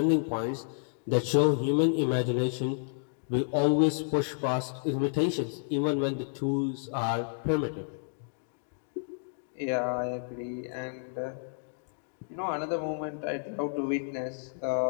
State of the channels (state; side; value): silent; right; digital silence